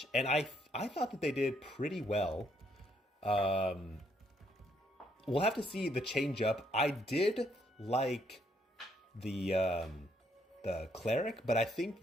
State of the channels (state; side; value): normal; both; correlation 0.71